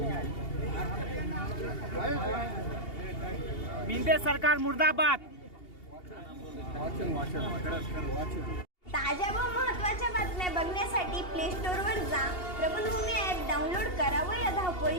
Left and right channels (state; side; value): late; right; 2.8 ms